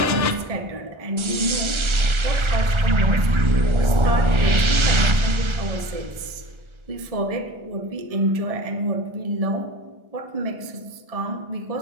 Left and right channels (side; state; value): left; late; 1.3 ms